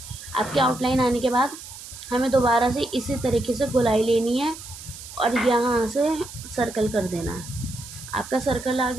आपकी आउटलाइन आने के बाद हमें दोबारा से इसी तरीके से गोलाई लेनी है और यहाँ से सर्कल कर देना है। आपका सर्कल आ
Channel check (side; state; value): right; noise; hiss, 14 dB below the sound